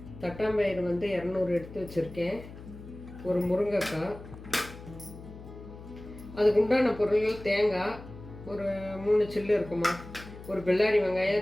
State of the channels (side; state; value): left; noise; hum, 15 dB below the sound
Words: தட்டாம்பயிறு 200 எடுத்து வச்சுருக்கேன். ஒரு முருங்கைக்காய், அதுக்கு உண்டான பொருள்கள் தேங்காய் ஒரு 3 சில்லு இருக்குமா, ஒரு பெல்லாரி வெங்காயம்,